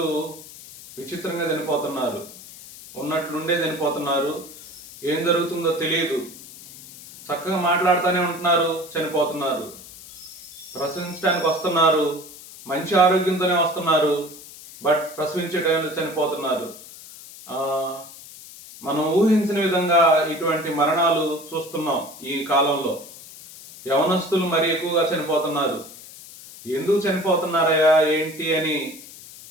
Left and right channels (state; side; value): noise; left; hiss, 17 dB below the sound